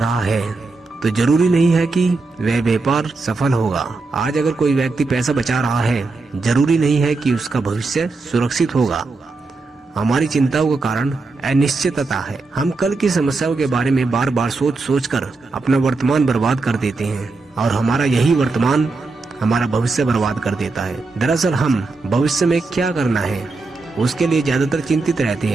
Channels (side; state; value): left; quieter; 3.7 dB